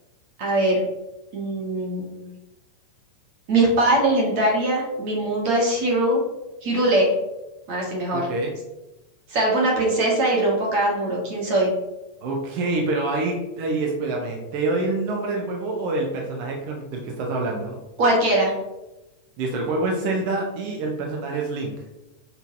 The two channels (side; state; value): left; late; 8.7 ms